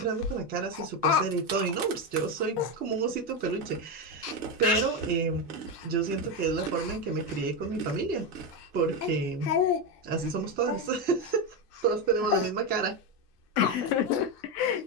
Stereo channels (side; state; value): both; normal; correlation 0.11